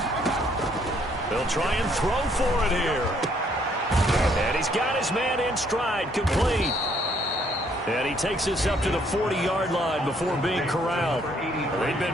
They'll try and throw for it here. And he's got his man in stride, complete. And he takes us up to the 40-yard line before being corralled. They've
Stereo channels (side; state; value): both; normal; correlation 0.67